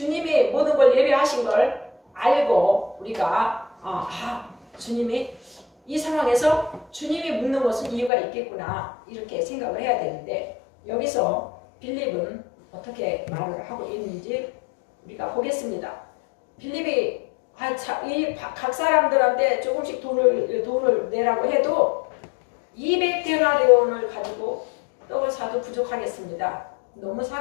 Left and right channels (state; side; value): drops out; right; at 8.1 s